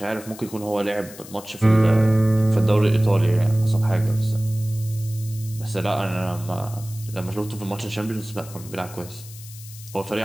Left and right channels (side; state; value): left; noise; hiss, 17 dB below the sound